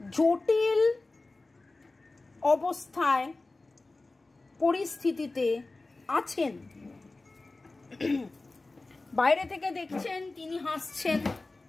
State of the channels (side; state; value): right; quieter; 3.3 dB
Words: জটিল অবস্থায় পরিস্থিতিতে আছেন, বাইরে থেকে দেখছেন তিনি হাসছেন,